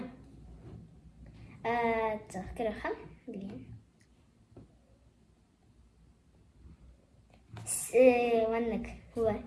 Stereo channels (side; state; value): both; identical; correlation 1.00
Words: Так, Арылхан. Блин. Ваннак.